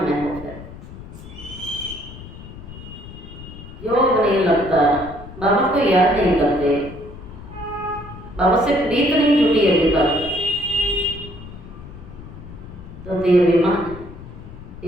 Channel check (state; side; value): noise; left; rumble, 14 dB below the sound